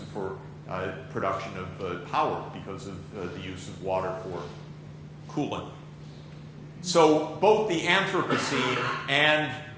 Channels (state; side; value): identical; both; correlation 1.00